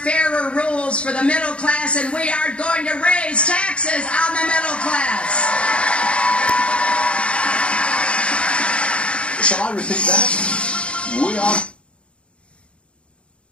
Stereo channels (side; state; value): right; late; 0.059 ms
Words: rules for the middle class, and we are going to raise taxes on the middle class. Shall I repeat that? We are...